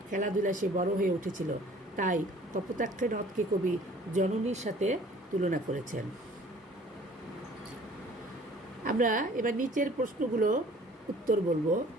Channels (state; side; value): normal; both; correlation 0.52